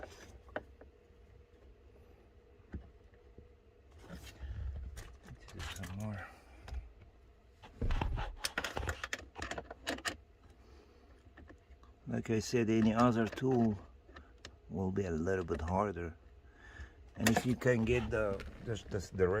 Let's do some more. Like I said, any other tool will be a little bit harder. And if you can get the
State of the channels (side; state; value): both; identical; correlation 1.00